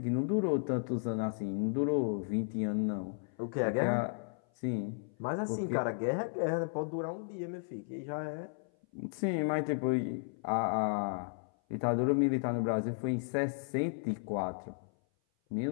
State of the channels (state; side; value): silent; right; 55 dB below the other